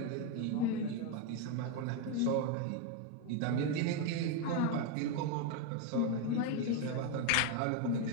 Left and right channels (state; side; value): different; both; correlation 0.02